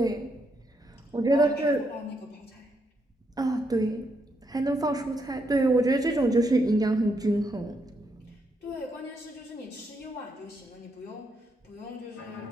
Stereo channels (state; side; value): normal; both; correlation 0.78